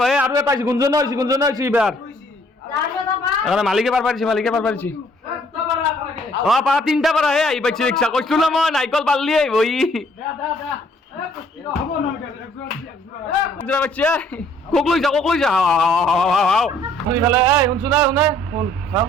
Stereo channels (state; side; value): normal; both; correlation 0.61